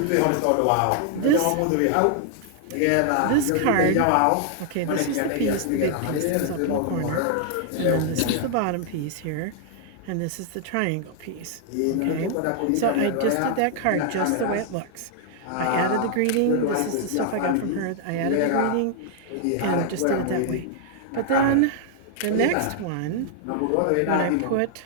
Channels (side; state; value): both; different; correlation 0.00